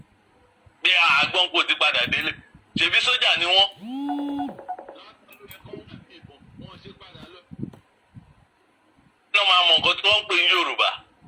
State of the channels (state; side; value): identical; both; correlation 1.00